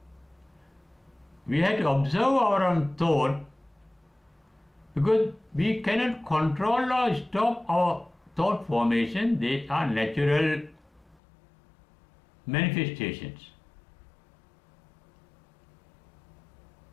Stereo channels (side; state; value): right; drops out; at 11.2 s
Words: We have to observe our own thought because we cannot control or stop our thought formation. They are natural manifestations.